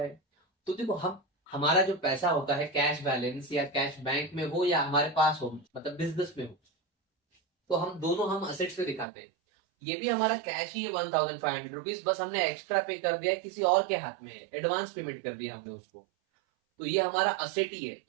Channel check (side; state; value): left; drops out; at 9.1 s